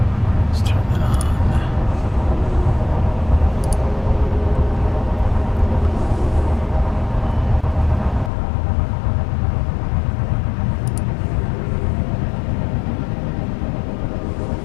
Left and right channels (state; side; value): drops out; right; at 8.3 s